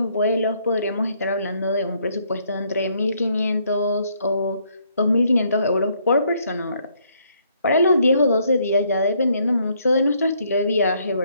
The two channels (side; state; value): both; inverted; correlation -0.69